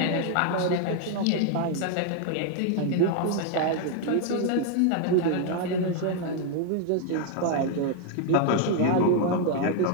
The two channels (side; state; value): both; different; correlation 0.00